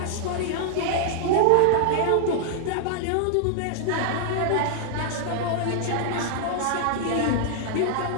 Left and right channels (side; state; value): both; different; correlation -0.01